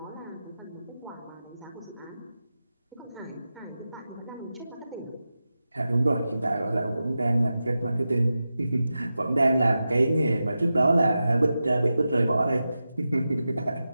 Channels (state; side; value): inverted; both; correlation -0.92